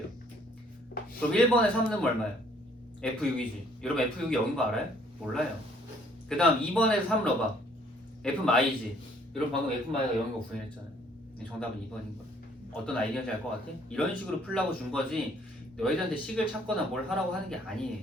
그럼 1번에 3 넣으면 얼마예요? f6이지. 여러분 f6이 0인 거 알아요? 몰라요. 그 다음 2번에서 3 넣어봐. f마이지. 여러분 방금 f마이가 0인 거 구현했잖아요. 정답은 2번인 거야. 어떤 아이디어인지 알 것 같아? 이런 식으로 풀라고 준 거지 너희들한테 식을 찾거나 뭘 하라고 하는 게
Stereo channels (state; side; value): normal; both; correlation 0.61